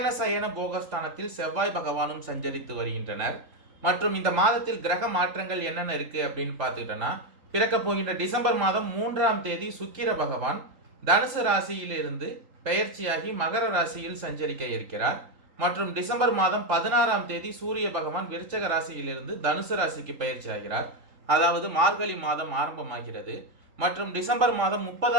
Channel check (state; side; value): late; left; 3.8 ms